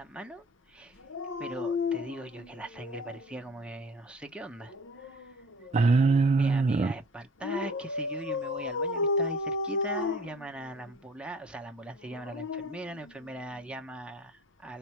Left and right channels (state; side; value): normal; both; correlation 0.49